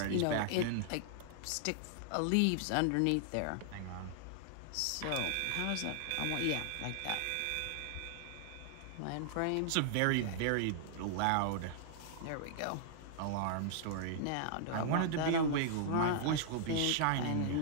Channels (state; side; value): different; both; correlation -0.01